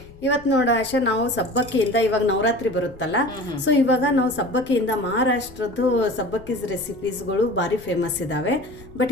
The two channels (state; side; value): noise; left; rumble, 21 dB below the sound